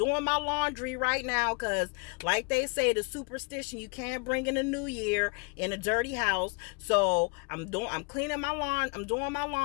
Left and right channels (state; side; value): quieter; right; 33.0 dB